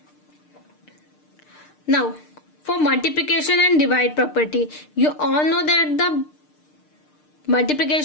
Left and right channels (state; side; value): late; right; 6.6 ms